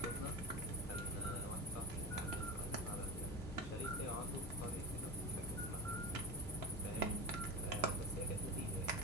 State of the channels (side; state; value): both; normal; correlation 0.27